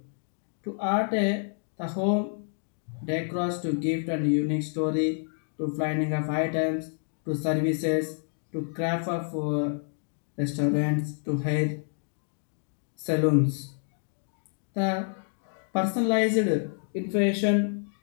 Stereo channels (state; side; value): silent; right; 59 dB below the other